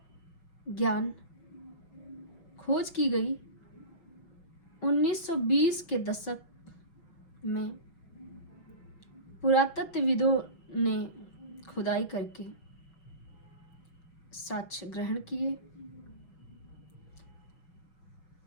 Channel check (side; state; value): right; late; 6.1 ms